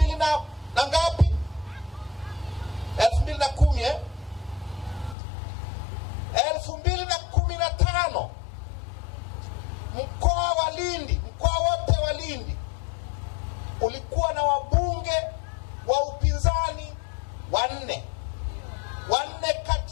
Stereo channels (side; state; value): right; drops out; at 5.2 s